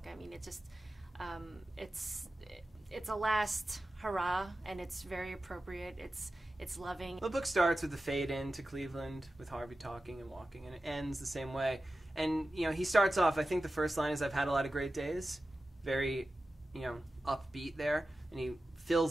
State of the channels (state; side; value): normal; both; correlation 0.94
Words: I mean, it's just, it's a last hurrah, and it's very appropriate. It's loving. The book starts with the fade in to Cleveland with Harvey talking and walking, and it ends the same way. And he starts off. I think the first line is, "I've had a lot of great days," very, upbeat there, and he